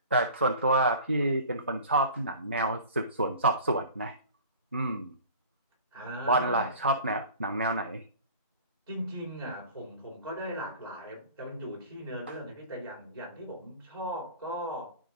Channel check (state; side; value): inverted; both; correlation -0.42